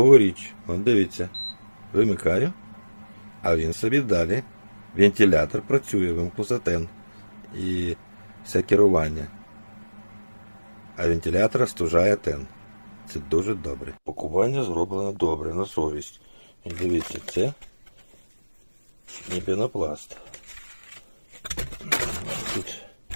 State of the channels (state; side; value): inverted; both; correlation -1.00